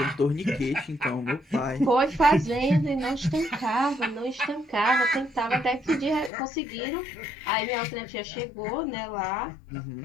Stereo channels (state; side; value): drops out; right; at 6.3 s